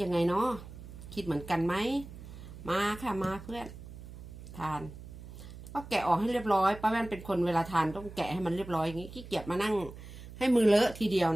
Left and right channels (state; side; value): noise; right; hum, 14 dB below the sound